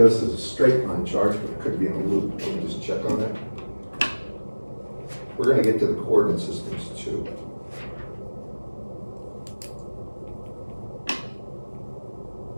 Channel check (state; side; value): inverted; both; correlation -1.00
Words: is a straight line charge, but it could be in a loop. Let me just check on that. We're going to get to the coordinate systems too.